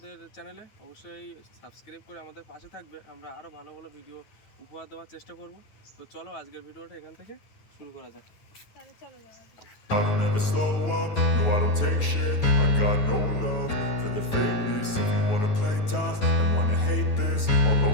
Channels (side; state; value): right; late; 9.3 ms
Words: চ্যানেলে, অবশ্যই সাবস্ক্রাইব করে আমাদের পাশে থাকবে। আমরা আরও ভালো ভালো ভিডিও উপহার দেওয়ার চেষ্টা করব। তো চলো আজকের ভিডিওটা এখান থেকে শুরু করা যাক। তাহলে চলো যাওয়া যাক। I don't ever slow up, no I don't take shit. I got no love for the fakeness. If you wanna play tough and wanna hate this, I'll